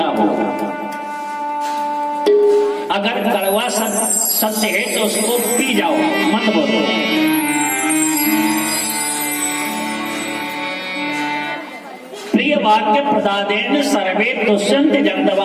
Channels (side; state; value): both; identical; correlation 1.00